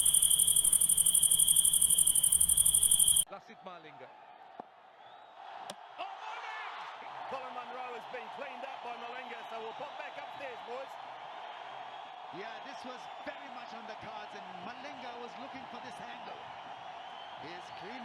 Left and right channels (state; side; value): identical; both; correlation 1.00